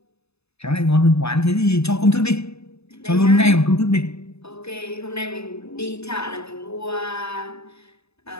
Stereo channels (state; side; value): late; right; 0.79 ms